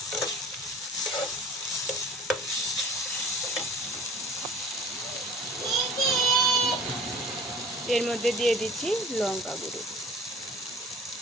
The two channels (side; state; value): both; normal; correlation 0.46